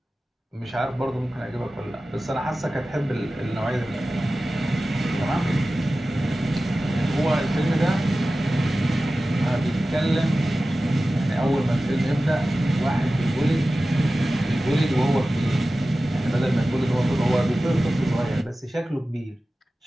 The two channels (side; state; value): both; normal; correlation 0.95